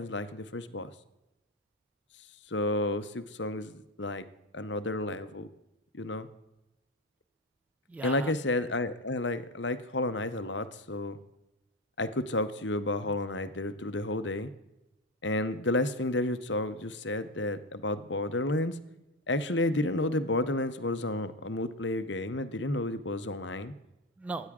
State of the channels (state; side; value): normal; both; correlation 0.14